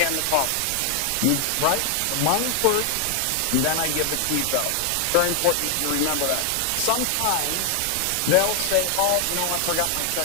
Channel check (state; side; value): different; both; correlation 0.00